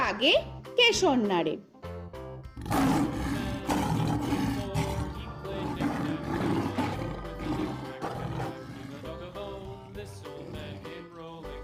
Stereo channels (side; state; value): both; identical; correlation 1.00